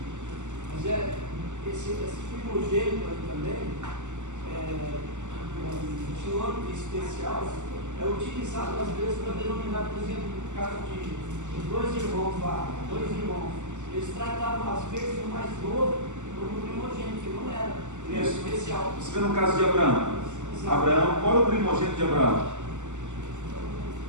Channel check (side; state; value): left; late; 0.84 ms